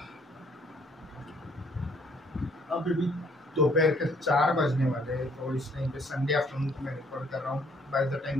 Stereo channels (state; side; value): normal; both; correlation 0.64